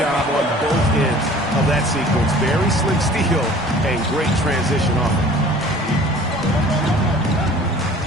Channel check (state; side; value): normal; both; correlation 0.48